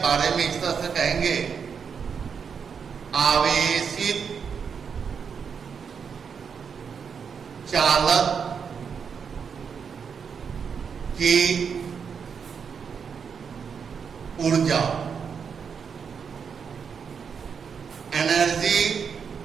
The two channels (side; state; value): left; quieter; 6.5 dB